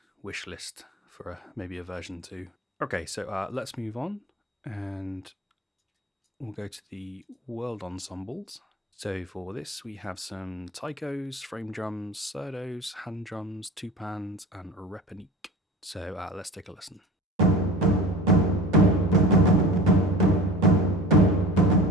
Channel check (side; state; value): both; normal; correlation 0.37